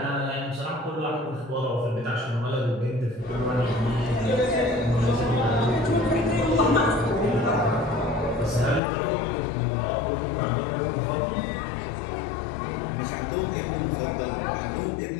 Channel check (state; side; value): drops out; right; at 8.8 s